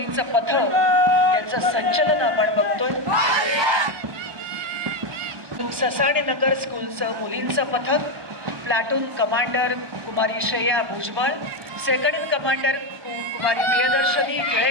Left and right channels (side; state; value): left; late; 1.2 ms